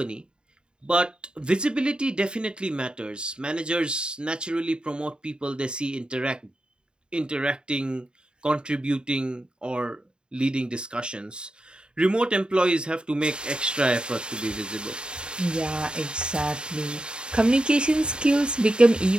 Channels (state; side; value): late; left; 0.050 ms